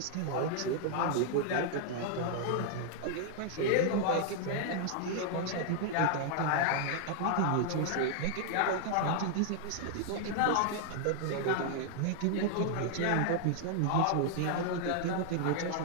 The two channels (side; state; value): both; different; correlation 0.00